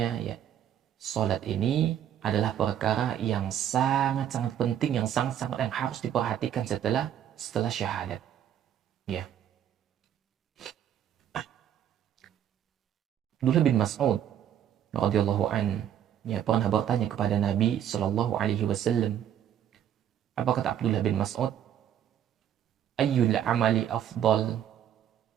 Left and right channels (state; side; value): quieter; left; 10.1 dB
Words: ya sholat ini adalah perkara yang sangat-sangat penting, yang harus diperhatikan setelah syahadat. Ya. Abdullah bin Mas'ud radhiyallahu an pernah bertanya kepada Nabi sallallahu alaihi wasallam. Apa kata Abdullah bin Mas'ud? Ayyul amali afdal?